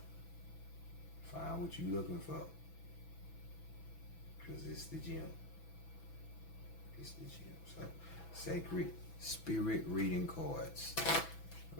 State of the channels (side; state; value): right; late; 6.1 ms